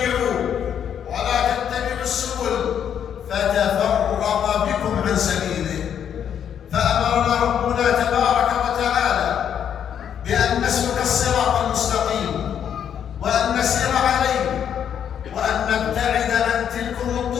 ولا تتبعوا السبل فتفرق بكم عن سبيله. فأمرنا ربنا تبارك وتعالى بأن نسلك الصراط المستقيم وأن نسير عليه، وأن نبتعد عن تلكم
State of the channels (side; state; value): right; quieter; 8.8 dB